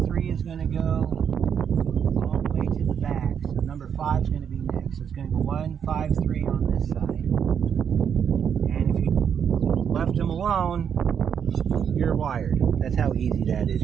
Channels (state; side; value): quieter; left; 7.8 dB